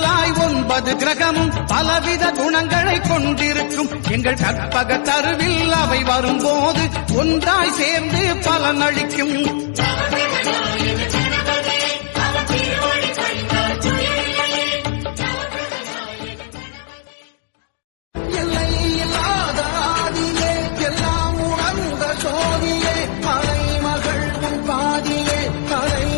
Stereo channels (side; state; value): right; silent; digital silence